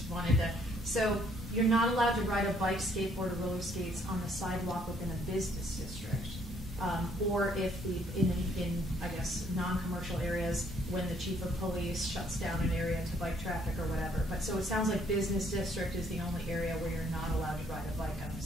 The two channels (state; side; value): normal; both; correlation 0.65